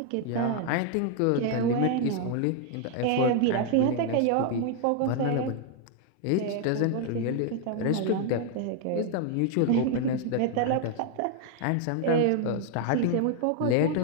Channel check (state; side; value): different; both; correlation 0.00